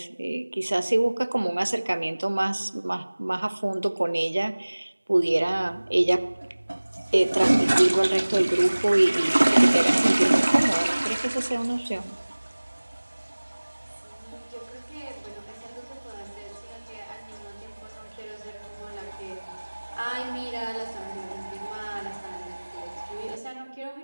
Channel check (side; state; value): both; inverted; correlation -1.00